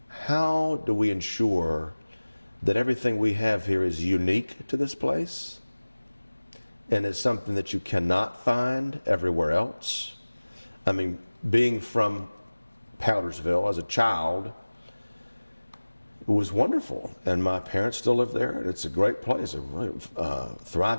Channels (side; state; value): both; inverted; correlation -1.00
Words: how do we ensure that everything we have here is unique to this place and is something that you cannot find everywhere else? I mean, being from Powdersville as a child, it was wonderful, and my parents still live there, and it's a great place, a really